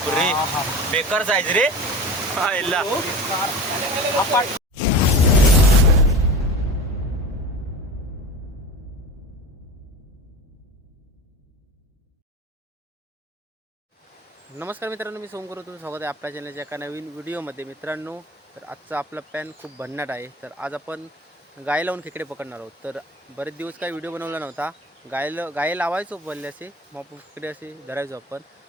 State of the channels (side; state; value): both; normal; correlation 0.34